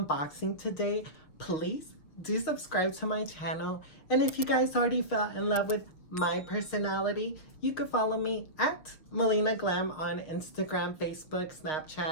today, please do subscribe to my channel. And if you guys already fell in love with my personality, you could follow me at Melina Glam on Instagram, Facebook,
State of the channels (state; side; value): late; right; 6.4 ms